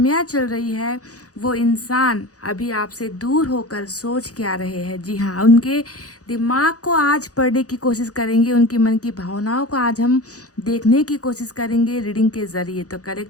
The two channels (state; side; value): late; right; 0.67 ms